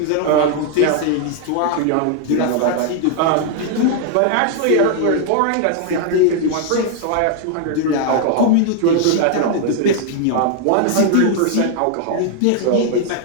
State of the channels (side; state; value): both; different; correlation 0.00